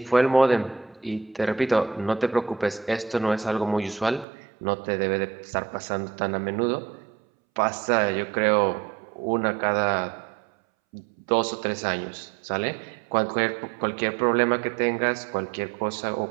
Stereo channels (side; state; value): left; drops out; at 4.2 s